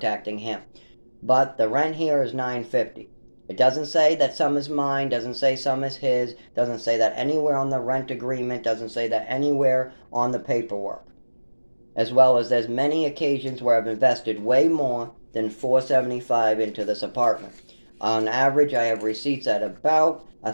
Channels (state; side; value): inverted; both; correlation -1.00